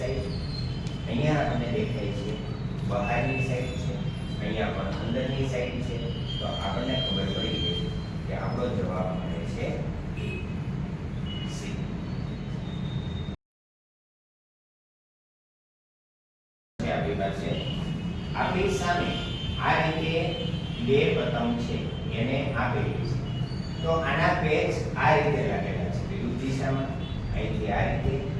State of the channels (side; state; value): both; identical; correlation 1.00